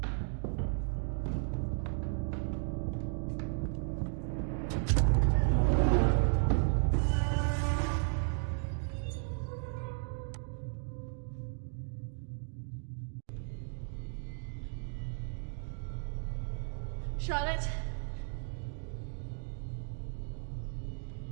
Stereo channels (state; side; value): silent; left; 55 dB below the other